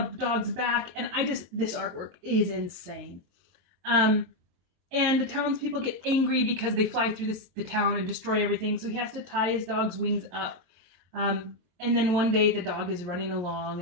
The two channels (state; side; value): late; left; 22 ms